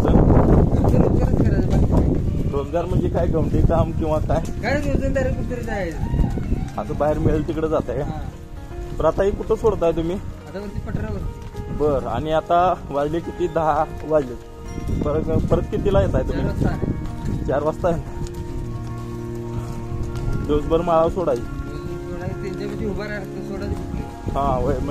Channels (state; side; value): identical; both; correlation 1.00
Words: रोजगारच करायचं बाकी नाही. रोजगार म्हणजे काय गमती काम किंवा काय? काय रोजंदारी कुठतरी जायचं. असं बाहेर मिळेल तिकडे जात आहे. बरं आता ही कुठं सोडताय तुम्ही? आता वरती पठारावर बर. आणि आता वाजले किती? 10 वाजले. परत कितीला येत आहे तुम्ही? 4 वाजता आहे. दिवसभर माळावर सोडायची. त्यांच्यापाशी उभा राहतो सोडायची. हा होय.